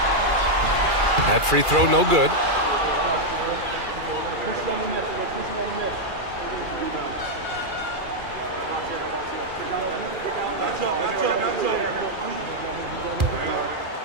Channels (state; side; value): late; left; 2.4 ms